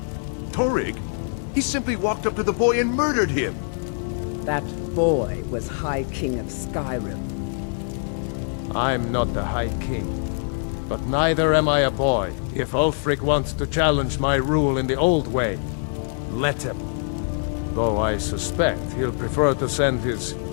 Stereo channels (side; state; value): right; silent; digital silence